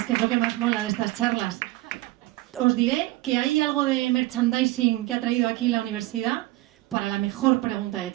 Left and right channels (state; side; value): quieter; left; 18.6 dB